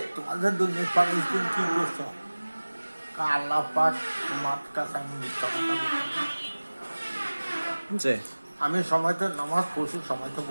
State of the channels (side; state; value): both; inverted; correlation -1.00